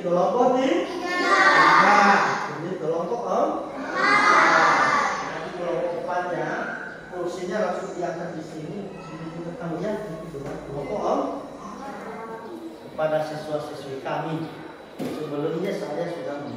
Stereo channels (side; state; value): both; identical; correlation 1.00